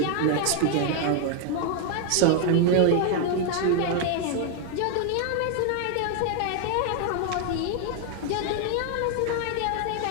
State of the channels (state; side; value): different; both; correlation 0.00